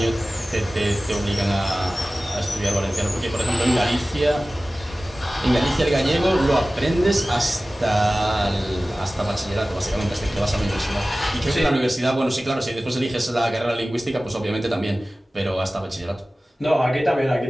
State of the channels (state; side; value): normal; both; correlation 0.97